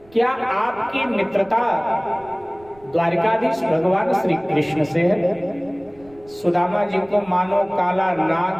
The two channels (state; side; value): noise; right; rumble, 27 dB below the sound